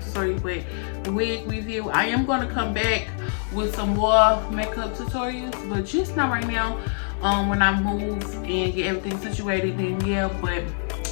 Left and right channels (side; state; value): right; silent; 62 dB below the other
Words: tutorial, but wig review. I am going to come back with some more makeup tutorials, but just not right now. When I move and get everything situated, then yeah. But